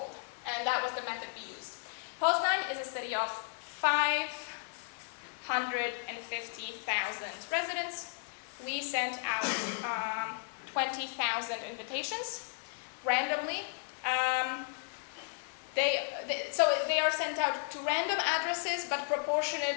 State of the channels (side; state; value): right; silent; 55 dB below the other